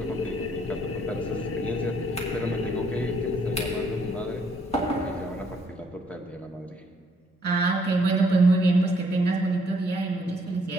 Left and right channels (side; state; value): both; normal; correlation 0.67